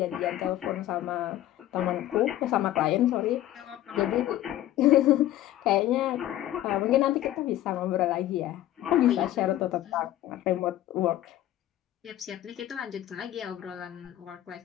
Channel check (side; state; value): right; quieter; 13.6 dB